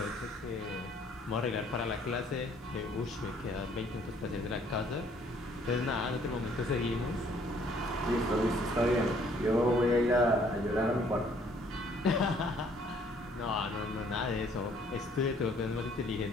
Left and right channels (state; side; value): normal; both; correlation 0.61